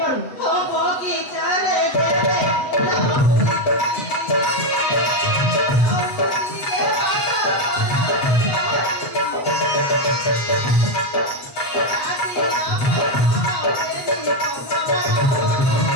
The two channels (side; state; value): right; late; 7.9 ms